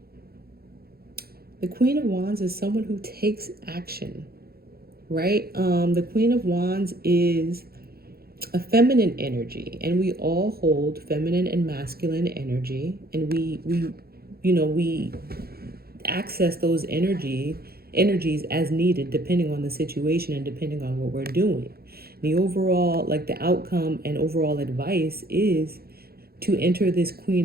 The Queen of Wands is someone who takes action, right? The Queen of Wands is a feminine energy, and we all hold feminine and masculine energy, and we access those energies as needed, depending on the situation and depending on what we're doing. The overall, the outcome and overall advice is to enter this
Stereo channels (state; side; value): late; left; 0.45 ms